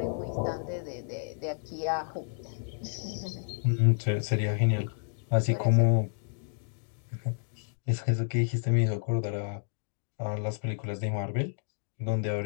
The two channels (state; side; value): silent; right; digital silence